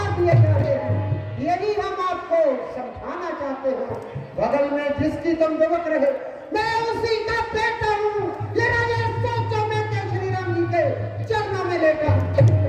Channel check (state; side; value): identical; both; correlation 1.00